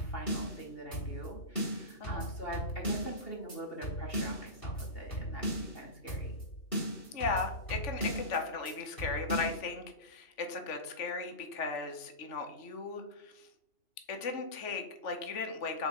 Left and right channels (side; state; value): right; late; 3.4 ms